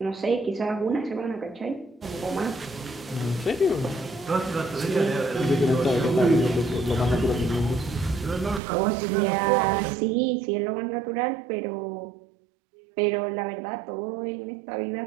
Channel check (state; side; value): drops out; left; at 8.6 s